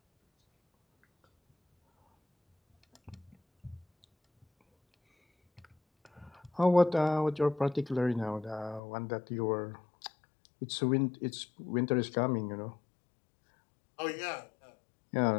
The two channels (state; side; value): drops out; right; at 8.8 s